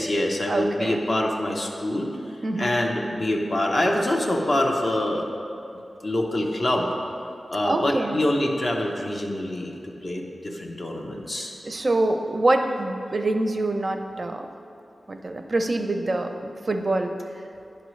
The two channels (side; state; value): both; normal; correlation 0.94